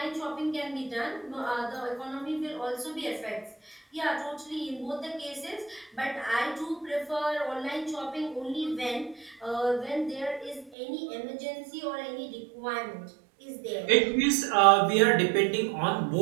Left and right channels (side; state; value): left; drops out; at 10.7 s